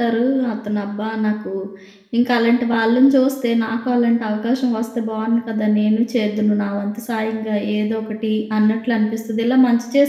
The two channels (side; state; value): both; identical; correlation 1.00